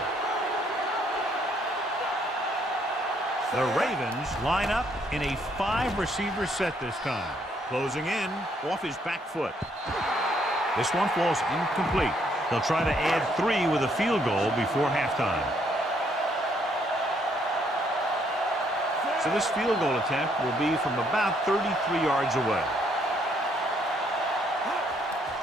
The Ravens line up in a 5-receiver set this time. Closing in off his back foot. This one falls incomplete. They'll try to add 3 with a field goal before halftime. So this field goal attempt will be from about 33 yards away.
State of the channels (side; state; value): both; normal; correlation 0.69